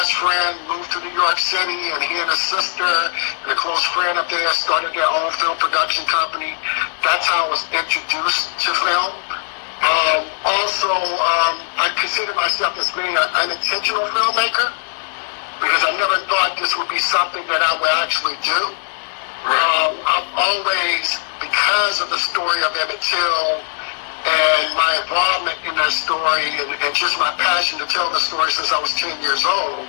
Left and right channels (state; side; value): silent; right; 66 dB below the other